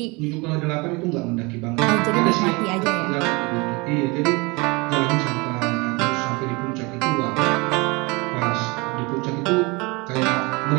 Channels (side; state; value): left; quieter; 26.6 dB